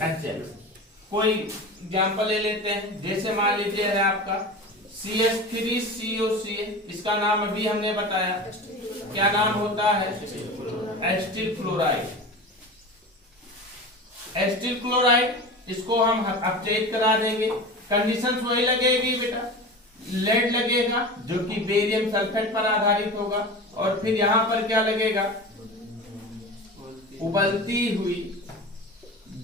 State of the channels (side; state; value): both; normal; correlation 0.31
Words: HX। कोई एग्जांपल ले लेते हैं, जैसे मान लीजिए है आपका CH3COCl, इसका नाम अभी हमने बताया, क्या नाम होता है, एसिटिल क्लोराइड। एसिटिल क्लोराइड, इसको हम अपचयित करा देंगे। कंडीशंस वही लगेगी बेटा, लेड लगेगा जो कि बेरियम सल्फेट पर आधारित होगा, और फिर यहां पर क्या लगेगा, उबलती हुई